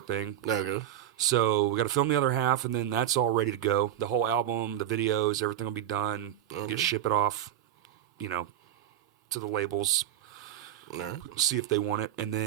thing. There you go. So we got to film the other half, and then that's all ready to go. The whole album, the videos, everything will be done. Okay. Ship it off, to the labels. Right. See if they want it, and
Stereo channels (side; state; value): left; quieter; 11.3 dB